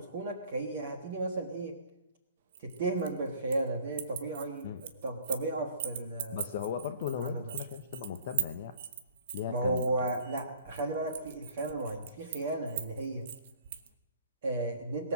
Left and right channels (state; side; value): inverted; both; correlation -0.52